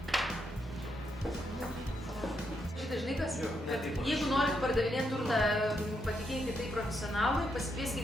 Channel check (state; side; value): normal; both; correlation 0.80